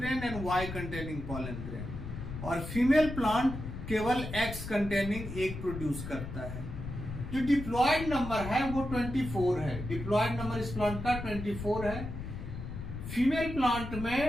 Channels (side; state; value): left; noise; rumble, 8 dB below the sound